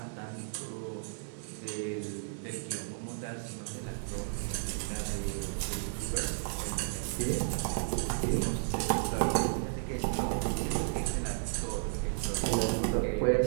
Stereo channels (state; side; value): silent; left; digital silence